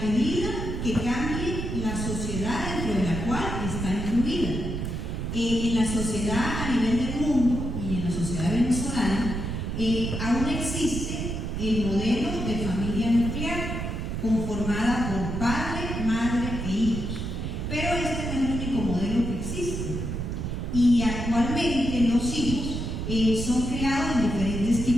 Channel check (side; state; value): right; noise; rumble, 3 dB below the sound